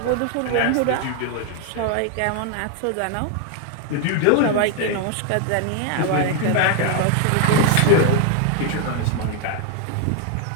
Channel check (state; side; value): different; both; correlation 0.00